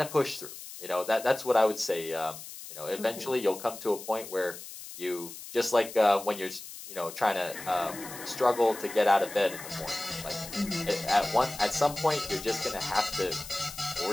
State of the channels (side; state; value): left; noise; hiss, 13 dB below the sound